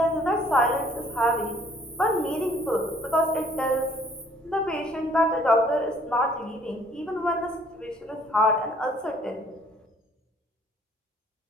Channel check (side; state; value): both; normal; correlation 0.60